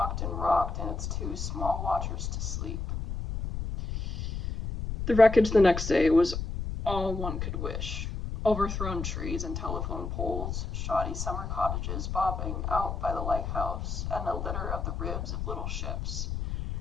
and rocked, and its two small watchers to sleep. The wreckage the next day was all one could wish. Overthrown trees and telephone poles, shoddy summer cottages bobbing out by the lighthouse, and a litter of the ribs of little ships.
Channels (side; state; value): left; noise; rumble, 4 dB below the sound